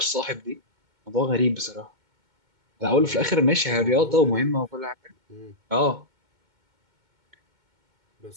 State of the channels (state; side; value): late; left; 2.2 ms